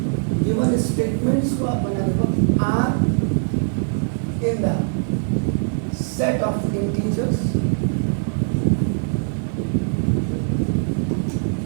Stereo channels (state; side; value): silent; left; 63 dB below the other